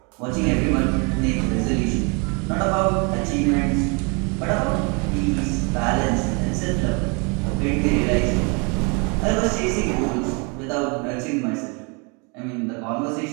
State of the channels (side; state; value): left; quieter; 32.6 dB